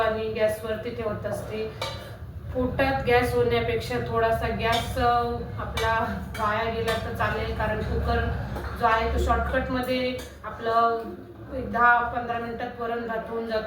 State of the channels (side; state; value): both; identical; correlation 1.00